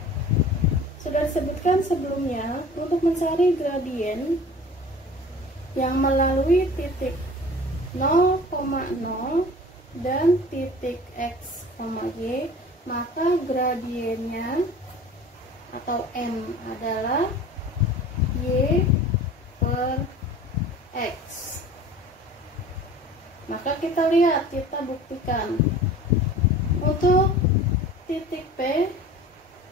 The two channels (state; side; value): normal; both; correlation 0.42